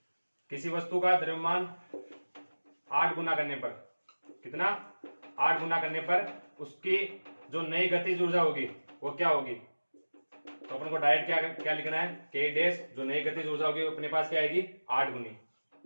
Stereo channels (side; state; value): both; inverted; correlation -1.00